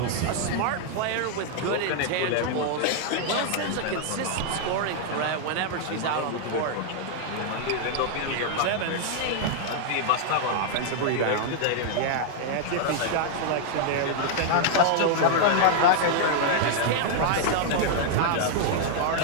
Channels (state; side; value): different; both; correlation -0.01